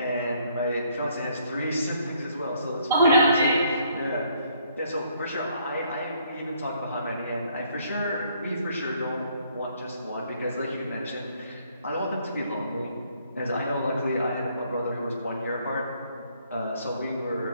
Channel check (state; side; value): inverted; both; correlation -0.66